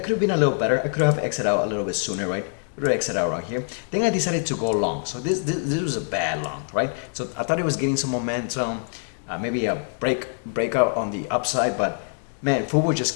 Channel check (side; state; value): right; silent; digital silence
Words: have been a little better. I could have exited out a little bit sooner, right? Exit out right here. Then I decided to go long. So this was a bad long, right? So I thought it was getting some momentum, maybe a breakout on the upside, but man, Fubo just